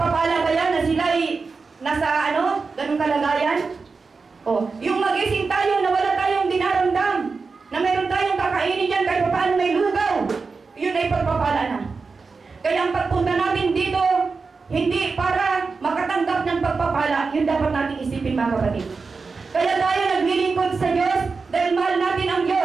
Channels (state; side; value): quieter; left; 4.5 dB